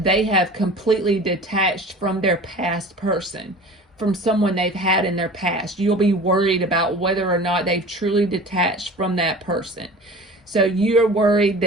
they have completely detached from their past person, from someone they've had in their past. You'll be worried about whether or not they've truly detached from that person. So you're worried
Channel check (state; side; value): normal; both; correlation 0.39